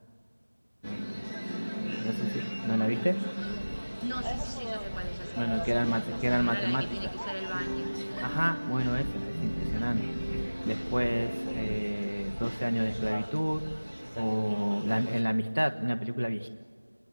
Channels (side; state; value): both; inverted; correlation -1.00